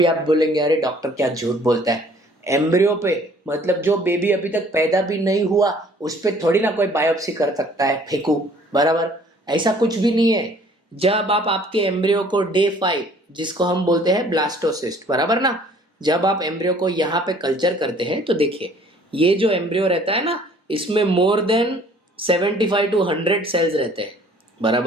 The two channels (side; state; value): both; normal; correlation 0.56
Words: आप बोलेंगे अरे डॉक्टर क्या झूठ बोलता है, एम्ब्रियो पे मतलब जो बेबी अभी तक पैदा भी नहीं हुआ उस पर थोड़ी ना कोई बायोप्सी कर सकता है, फेंकू, बराबर। ऐसा कुछ भी नहीं है। जब आप आपके एम्ब्रियो को डे 5, जिसको हम बोलते हैं ब्लास्टोसिस्ट, बराबर ना, जब आप एम्ब्रियो को यहाँ पे कल्चर करते हैं तो देखिए, ये जो एम्ब्रियो रहता है ना, इसमें मोर देन 75 to 100 सेल्स रहते हैं,